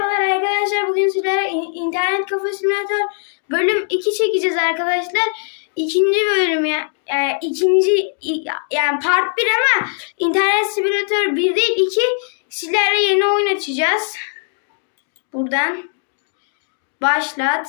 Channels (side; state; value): right; silent; 63 dB below the other